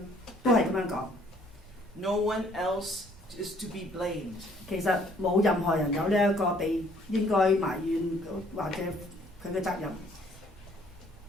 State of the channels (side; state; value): both; normal; correlation 0.61